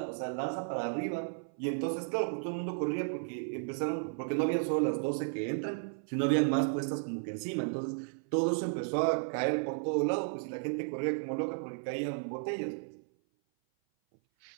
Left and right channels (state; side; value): silent; left; 55 dB below the other